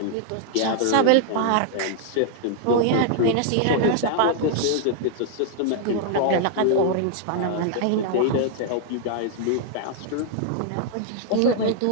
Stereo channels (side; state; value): both; different; correlation -0.01